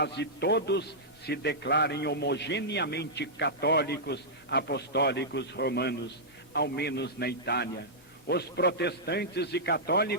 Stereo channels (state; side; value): normal; both; correlation -0.11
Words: todos se declarem homogeneamente católicos, apostólicos romanos, ao menos na Itália. Os protestantes e